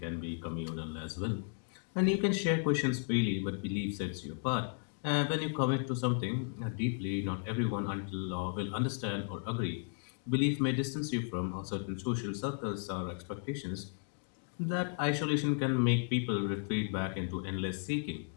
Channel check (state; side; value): silent; right; 55 dB below the other